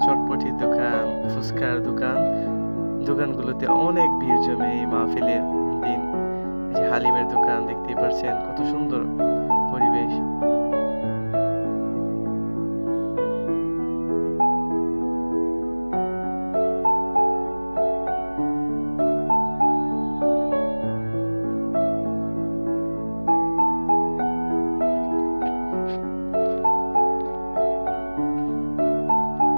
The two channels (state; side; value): inverted; both; correlation -1.00